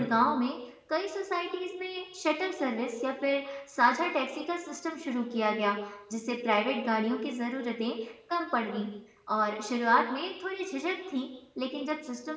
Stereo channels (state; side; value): identical; both; correlation 1.00